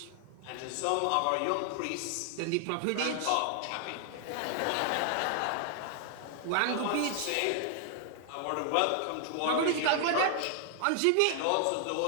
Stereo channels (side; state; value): both; different; correlation 0.00